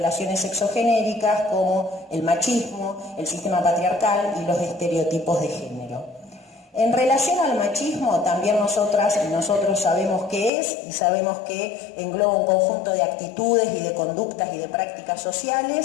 sexogenéricas, como el machismo, el sistema patriarcal y los estereotipos de género. En relación al machismo, también nosotras y nosotros sabemos qué es y sabemos que engloba un conjunto de actitudes y de conductas y de prácticas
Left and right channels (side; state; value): right; drops out; at 10.5 s